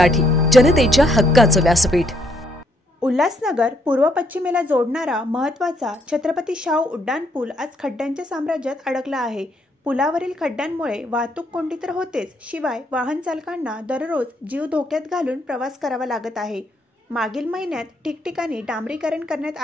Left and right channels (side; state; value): both; normal; correlation 0.71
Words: जनतेच्या हक्काचं व्यासपीठ। उल्हासनगर पूर्व पश्चिमेला जोडणारा महत्त्वाचा छत्रपती शाहू उड्डाणपूल आज खड्ड्यांच्या साम्राज्यात अडकला आहे। पुलावरील खड्ड्यांमुळे वाहतूक कोंडी तर होतेच, शिवाय वाहन चालकांना दररोज जीव धोक्यात घालून प्रवास करावा लागत आहे। मागील महिन्यात ठिकठिकाणी डांबरीकरण करण्यात